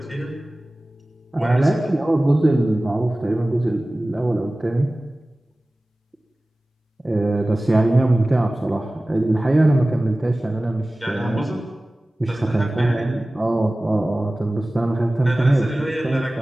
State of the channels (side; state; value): both; normal; correlation 0.97